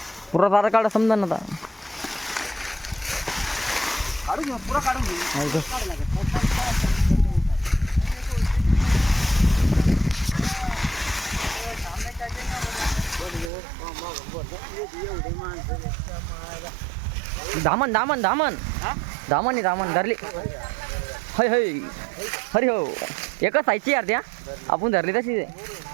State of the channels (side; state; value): left; drops out; at 13.5 s